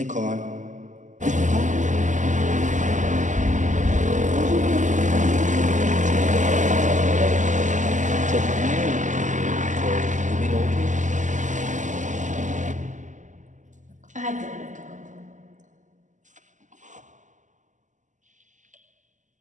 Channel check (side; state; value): left; late; 0.36 ms